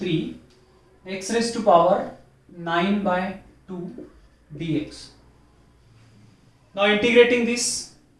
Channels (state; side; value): identical; both; correlation 1.00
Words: x raised to power 9 by 2 dx. Now integrating this,